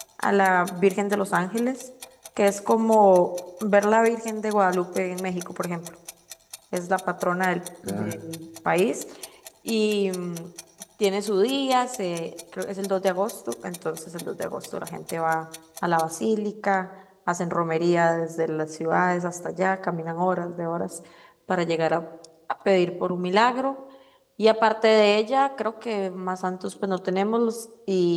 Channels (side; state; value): both; identical; correlation 1.00